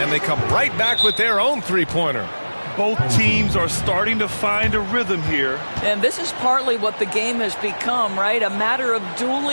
they come right back with their own three-pointer. Both teams are starting to find a rhythm here. And this is partly what the game has become, right? A matter of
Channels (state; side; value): inverted; both; correlation -1.00